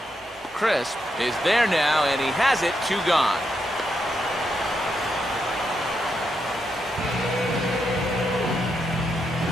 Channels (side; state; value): both; normal; correlation 0.82